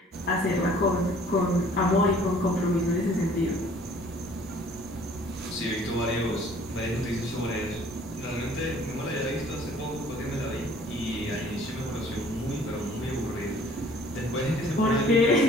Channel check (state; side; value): normal; both; correlation 0.54